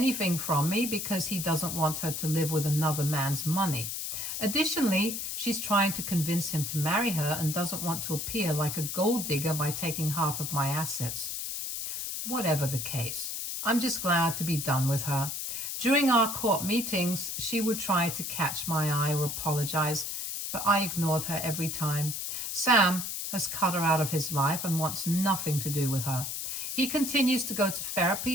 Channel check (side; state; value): left; noise; hiss, 4 dB below the sound